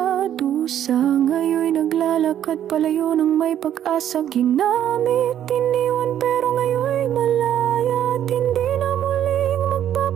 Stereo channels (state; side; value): quieter; left; 10.6 dB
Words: dusa, ngayon'y naglalakad palayo ng may pag-asa. Ginamit, iniwan, pero ngayon'y malaya. At hindi na muling